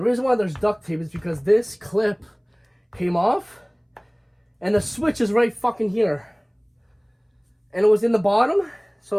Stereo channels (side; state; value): both; identical; correlation 1.00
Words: reason why there's duct tape is because this clip came off and the switch is right fucking here. And it was in the bottom, so